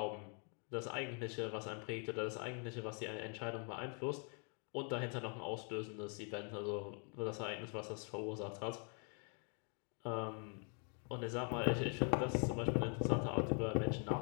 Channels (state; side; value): quieter; right; 39.8 dB